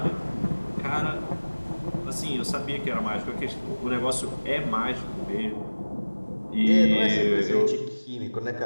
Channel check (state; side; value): inverted; both; correlation -1.00